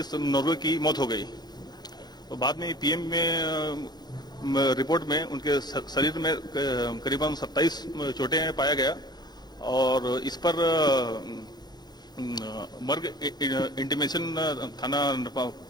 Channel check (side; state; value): right; late; 0.20 ms